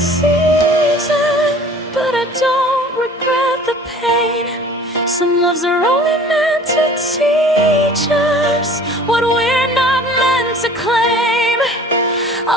but I don't regret the pain. Some loves are only meant to teach us what we're not meant to claim.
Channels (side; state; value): both; normal; correlation 0.48